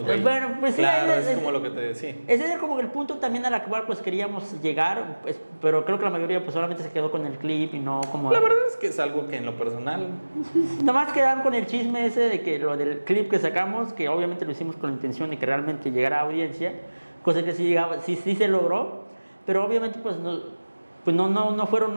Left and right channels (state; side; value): inverted; both; correlation -1.00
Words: güey. Bueno, pues claro, sí. Es como lo que te decía. Ese es como el punto también al cual pues queríamos llegar, pues, pero creo que la mayoría pues solamente se quedó con el clip y no como... La verdad es que es algo que en lo personal... Nomás quedaron con el chisme ese de que lo del clip que sacamos, que obviamente lo hicimos con la intención de que realmente llegara a audiencia, cosa que sí se logró, pero obviamente pues no fueron